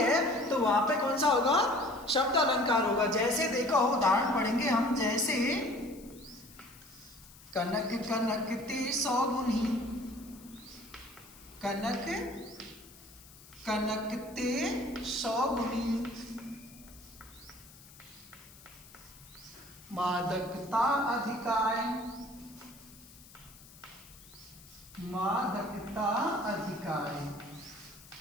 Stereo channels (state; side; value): noise; left; hiss, 21 dB below the sound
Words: तो वहां पे कौन सा होगा? शब्द अलंकार होगा। जैसे देखो उदाहरण पढ़ेंगे हम, जैसे कनक कनकते सौगुनी, कनक कनकते सौगुनी, मादकता अधिकाय,